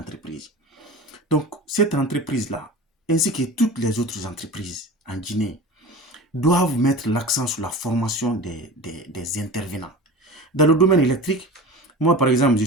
Donc, cette entreprise-là, ainsi que toutes les autres entreprises en Guinée, doivent mettre l'accent sur la formation des intervenants. Dans le domaine électrique, moi, par exemple, je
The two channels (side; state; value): both; normal; correlation 0.34